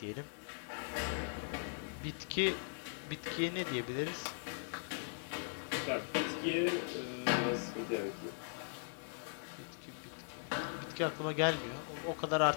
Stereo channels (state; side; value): silent; right; digital silence